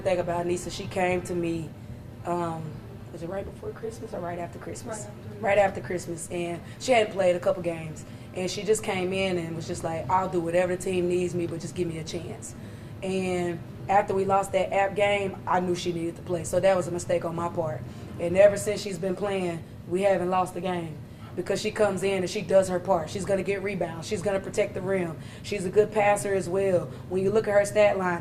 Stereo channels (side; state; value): both; identical; correlation 1.00